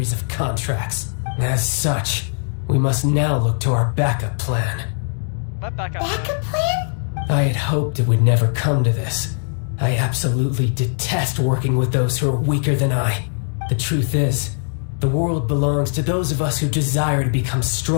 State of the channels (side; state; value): right; silent; digital silence